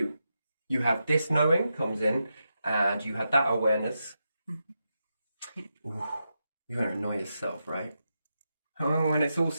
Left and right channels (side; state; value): both; inverted; correlation -0.87